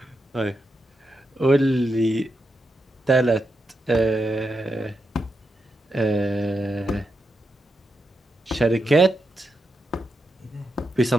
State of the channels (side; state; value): both; normal; correlation 0.85